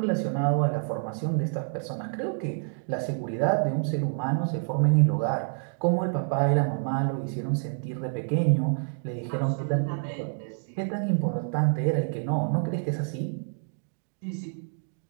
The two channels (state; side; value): silent; left; 60 dB below the other